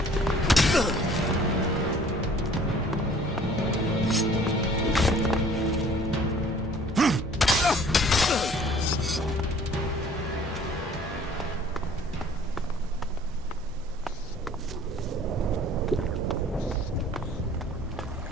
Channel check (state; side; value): normal; both; correlation 0.53